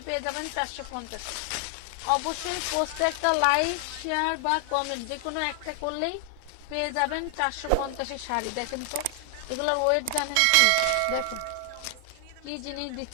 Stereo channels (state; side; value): different; both; correlation 0.00